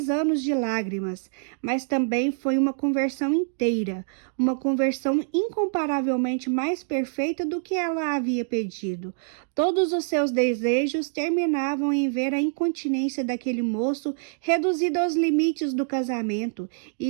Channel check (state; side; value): silent; left; digital silence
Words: anos de lágrimas, mas também foi uma conversão inteira, uma conversão incomparavelmente mais perfeita do que ela havia pedido. Todos os seus desejos terminavam em ver a incontinência daquele moço reduzida aos limites do casamento,